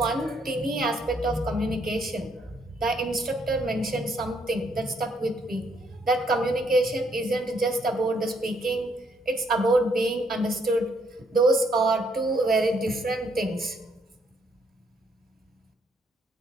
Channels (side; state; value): both; normal; correlation 0.71